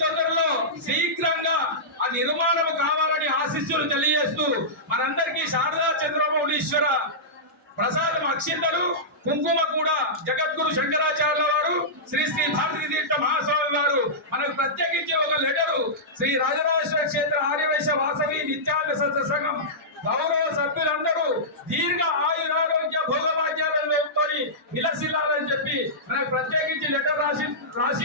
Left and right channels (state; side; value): normal; both; correlation -0.15